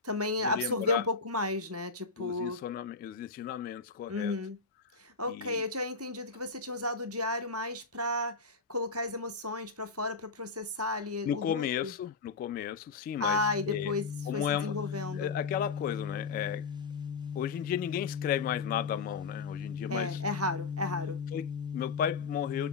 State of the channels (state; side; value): quieter; right; 4.6 dB